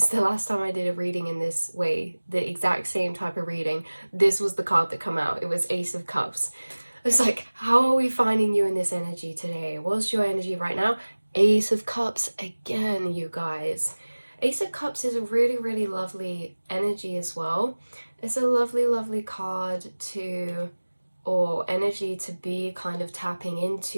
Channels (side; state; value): both; inverted; correlation -1.00